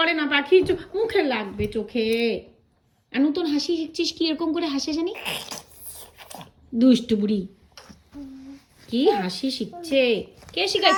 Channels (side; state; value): both; identical; correlation 1.00